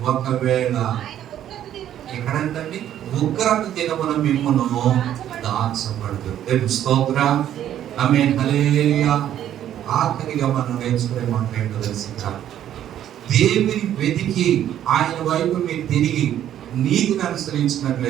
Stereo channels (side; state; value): left; quieter; 11.1 dB